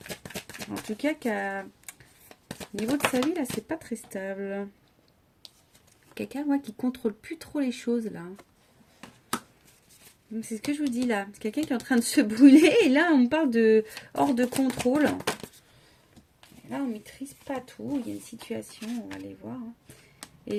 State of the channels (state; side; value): identical; both; correlation 1.00